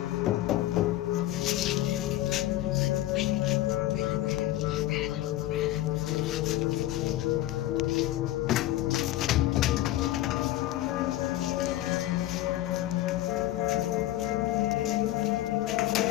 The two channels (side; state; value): right; quieter; 15.1 dB